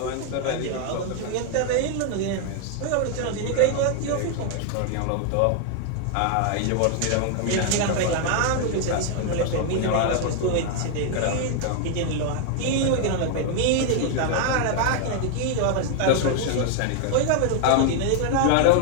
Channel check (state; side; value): different; both; correlation 0.00